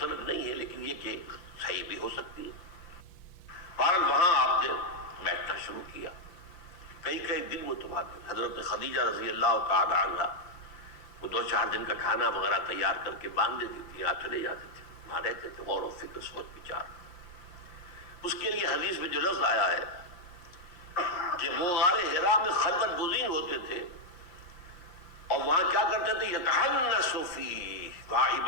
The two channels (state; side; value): late; right; 5.7 ms